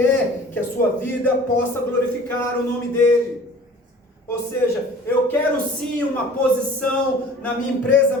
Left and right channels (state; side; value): normal; both; correlation 0.46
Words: que a sua vida possa glorificar o nome dEle. Ou seja, eu quero sim uma posição na minha empresa